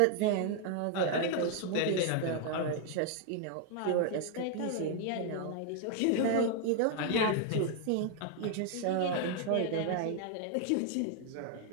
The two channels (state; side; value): different; both; correlation 0.00